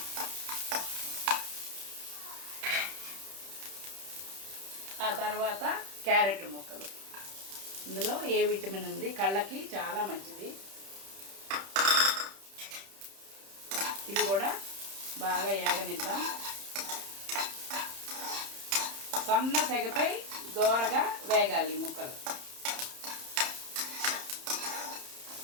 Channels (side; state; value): left; late; 31 ms